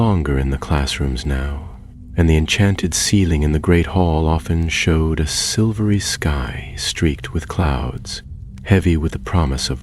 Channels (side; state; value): both; identical; correlation 1.00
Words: in the classrooms now, and the enchanted ceiling in the great hall often showed a silvery sky streaked with clouds, heavy with the promise